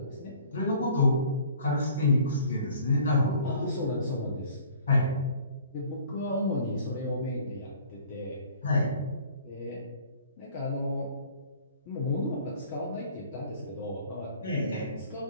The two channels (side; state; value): both; inverted; correlation -0.51